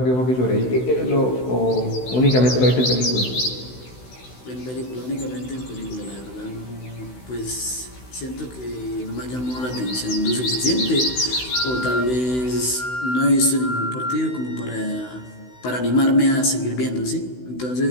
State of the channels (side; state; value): right; late; 16 ms